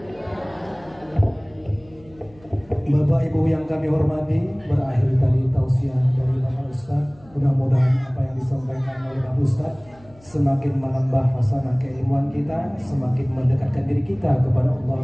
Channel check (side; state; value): left; noise; hum, 26 dB below the sound